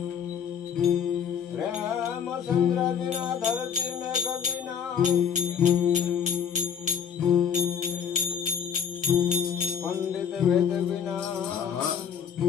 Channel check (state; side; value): quieter; right; 7.7 dB